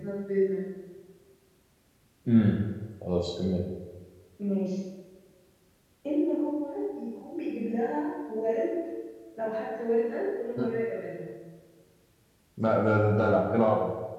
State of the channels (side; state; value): both; identical; correlation 1.00